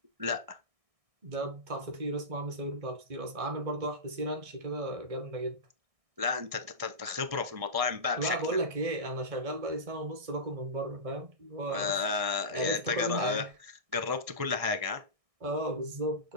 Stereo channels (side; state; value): left; late; 1.6 ms